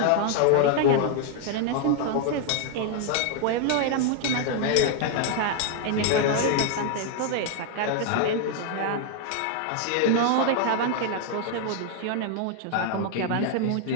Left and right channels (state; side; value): different; both; correlation 0.00